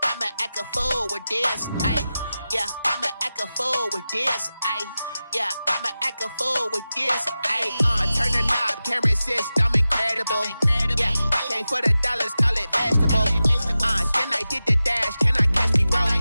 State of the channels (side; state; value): both; inverted; correlation -0.94